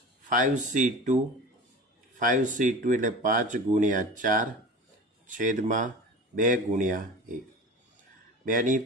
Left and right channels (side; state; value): both; normal; correlation 0.34